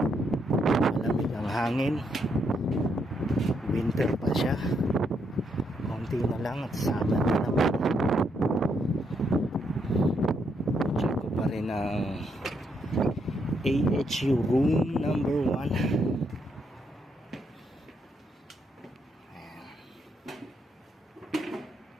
Malamig ang hangin. Winter pa siya. Konti na lang at summer na naman. Check ko pa rin ang AHU room number 1.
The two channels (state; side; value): normal; both; correlation 0.77